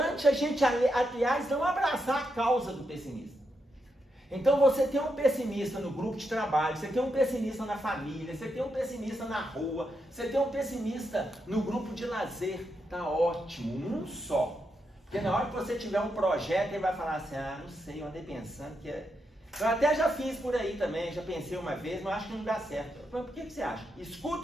a gente, aliás, não abraçar a causa do pessimista. Então você tem um pessimista no grupo de trabalho, você tem um pessimista na família, você tem um pessimista na rua, você tem um pessimista no grupo de lazer. Tá ótimo, um só. Porque na hora que você tiver um projeto, ele vai falar assim, não sei, eu andei pensando que é... Eu até já fiz por aí também, já pensei uma vez, mas acho que não dá certo. Mas por que você acha?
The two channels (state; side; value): normal; both; correlation 0.83